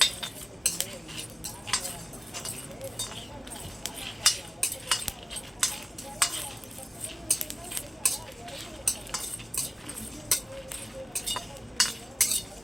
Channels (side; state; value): both; normal; correlation 0.97